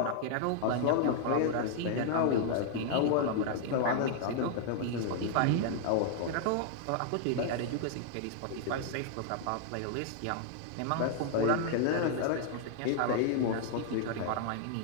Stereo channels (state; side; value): different; both; correlation -0.01